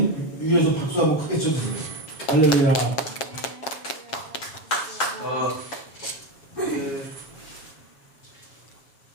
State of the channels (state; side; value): late; right; 7.4 ms